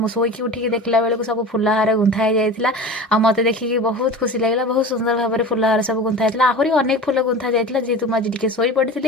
शोक उठिक देखला बेलू सब फुलहार गुंथा जाइए आ मत देखिए बहुत खुशी लगे बहुत सुंदर भाव में फुलहार सब गुंथा जाता आहरी अनेक फुल गुंथा जाता जेहेतु मुझे टे शोई पड़ी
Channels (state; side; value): normal; both; correlation 0.34